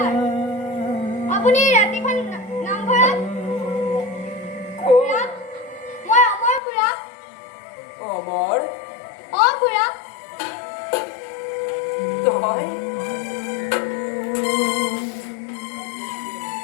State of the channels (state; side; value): drops out; right; at 6.6 s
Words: আপুনি ৰাতিখন নামঘৰত খুৰা মই অমৰ খুৰা অমৰ খুৰা তই